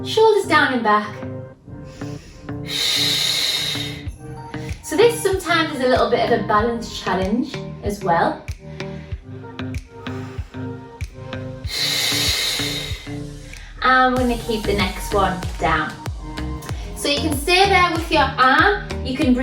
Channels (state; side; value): identical; both; correlation 1.00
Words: Shoulders down and back. So this sometimes is a little bit of a balance challenge as well. And we're going to keep the next one down. So you can stay there with your arm. You can